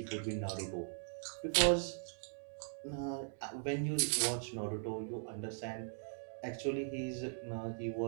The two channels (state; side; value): silent; left; digital silence